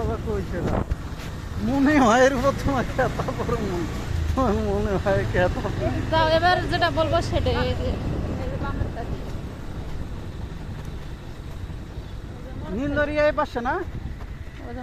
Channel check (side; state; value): both; identical; correlation 1.00